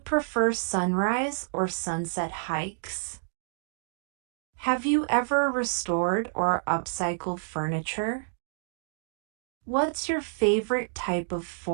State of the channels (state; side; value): silent; left; digital silence